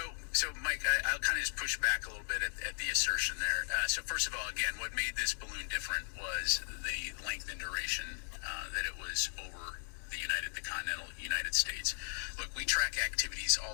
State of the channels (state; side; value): silent; right; digital silence